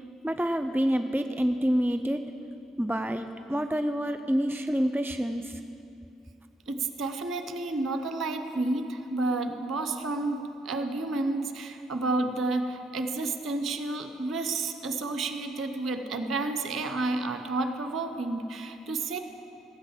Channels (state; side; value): normal; both; correlation 0.78